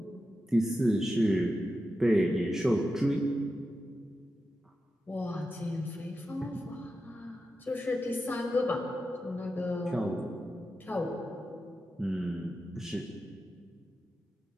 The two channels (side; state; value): both; normal; correlation 0.90